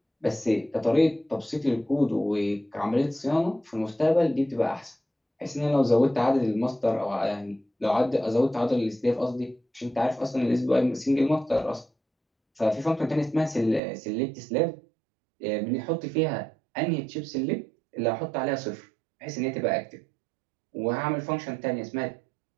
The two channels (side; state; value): left; drops out; at 13.8 s